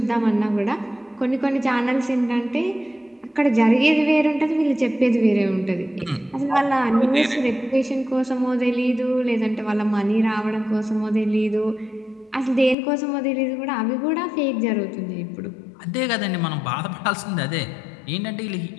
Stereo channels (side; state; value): right; drops out; at 12.8 s